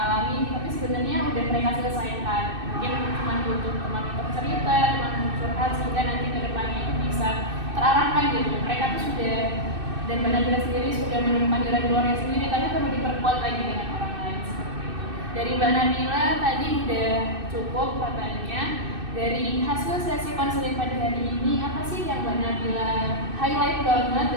tapi sebenarnya udah mereka selesaikan. Mungkin cuma butuh teman untuk cerita, teman untuk curhat sehingga nanti ke depannya itu bisa terarahkan gitu. Mereka tuh sudah, dan Mbak Nabila sendiri sudah menemukan jalan keluarnya sendiri, tapi perlu diperkuat lagi dengan orang lain seperti itu. Dari Mbak Nabila tadi udah cukup katanya. Dari hasil sesi konseling pada hari ini, apa sih yang Mbak Nabila highlight banget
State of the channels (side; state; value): left; late; 2.6 ms